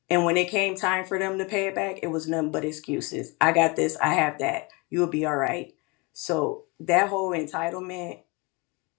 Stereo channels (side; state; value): right; quieter; 28.0 dB